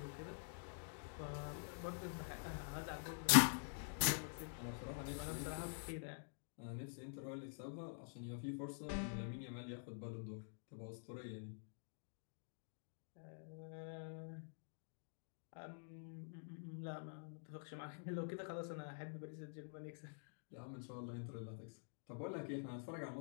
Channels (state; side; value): silent; right; digital silence